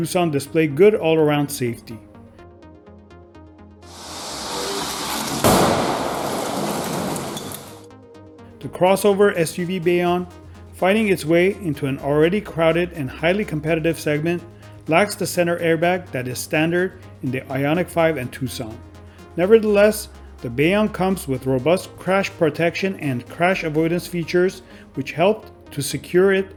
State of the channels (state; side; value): identical; both; correlation 1.00